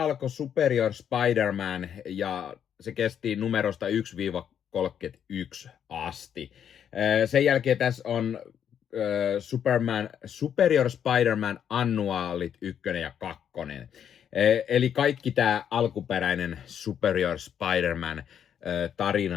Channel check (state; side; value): quieter; right; 8.8 dB